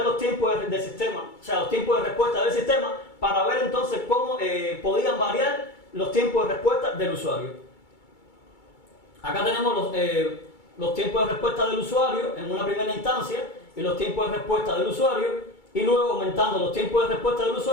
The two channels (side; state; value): right; late; 2.3 ms